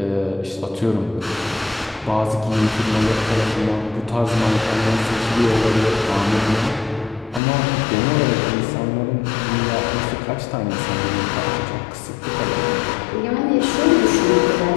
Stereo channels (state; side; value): drops out; right; at 7.4 s